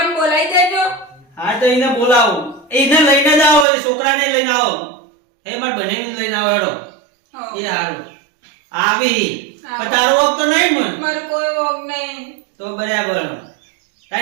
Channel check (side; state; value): left; drops out; at 3.7 s